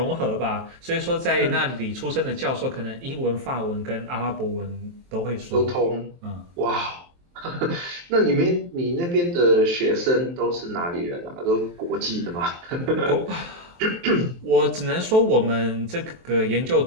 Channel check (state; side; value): late; left; 23 ms